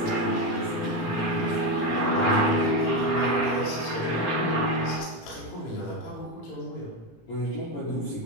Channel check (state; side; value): late; right; 18 ms